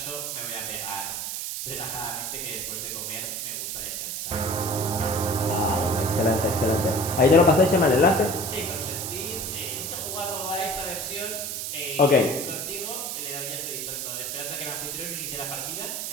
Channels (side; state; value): right; noise; hiss, 4 dB below the sound